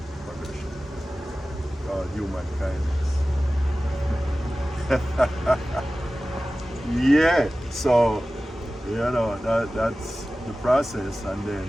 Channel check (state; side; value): normal; both; correlation 0.96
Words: progression called Human Kindness. Yeah, so, you know, that's the process. And